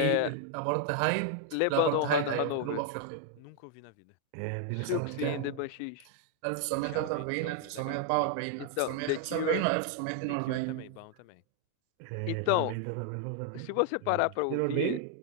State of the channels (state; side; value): different; both; correlation 0.00